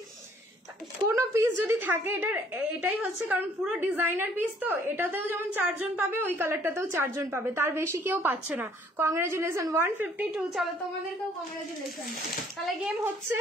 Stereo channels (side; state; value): both; normal; correlation 0.60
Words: কোন পিস যদি থাকে এটাই হচ্ছে, কারণ পুরো ডিজাইনার পিস তো, এটাতেও যেমন 4 জন পাবে, ওই কালারটাতেও 4 জন পাবে, তার বেশি কেউ পাচ্ছে না। কংগ্রাচুলেশন 152, চলো তোমাদেরকেও কংগ্রাচুলেশন। তাহলে গেম হচ্ছে